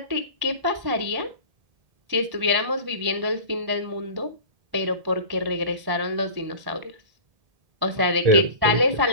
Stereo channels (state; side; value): late; left; 1.1 ms